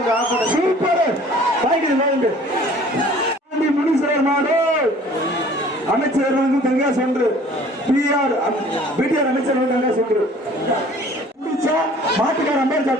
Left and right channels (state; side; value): normal; both; correlation 0.51